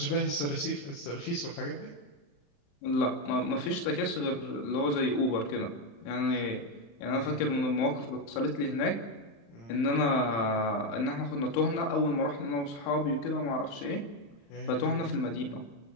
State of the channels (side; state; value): right; late; 35 ms